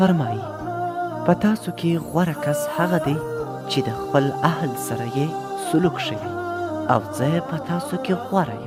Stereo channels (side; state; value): both; identical; correlation 1.00